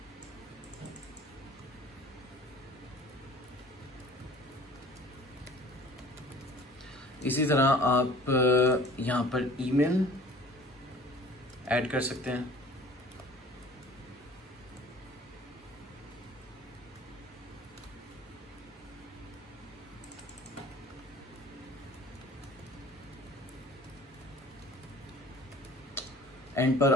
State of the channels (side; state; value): both; normal; correlation 0.48